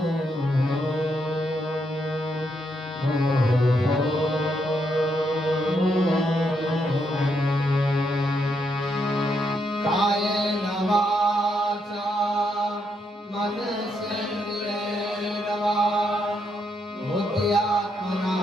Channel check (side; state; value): both; normal; correlation 0.78